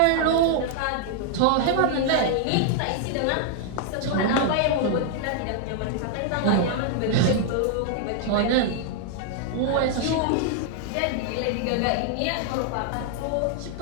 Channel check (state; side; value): different; both; correlation 0.00